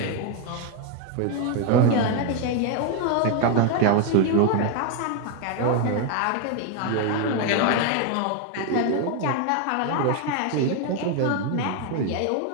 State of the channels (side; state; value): both; different; correlation 0.01